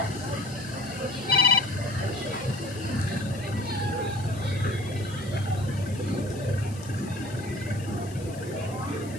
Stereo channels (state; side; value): noise; left; hiss, 19 dB below the sound